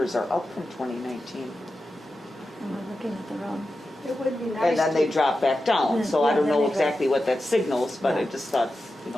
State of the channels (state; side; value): normal; both; correlation 0.91